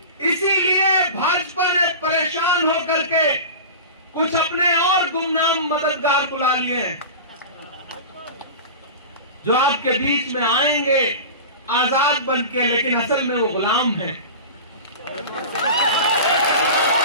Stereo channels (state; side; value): inverted; both; correlation -0.31